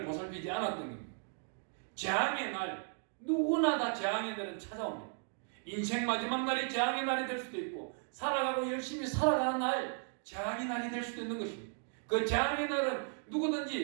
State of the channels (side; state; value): left; silent; 54 dB below the other